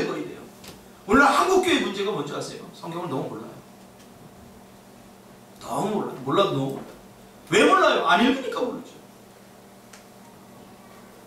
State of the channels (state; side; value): identical; both; correlation 1.00